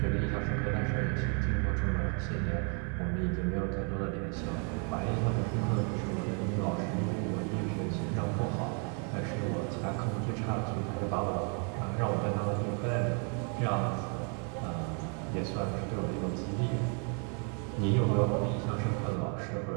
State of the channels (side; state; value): left; quieter; 39.3 dB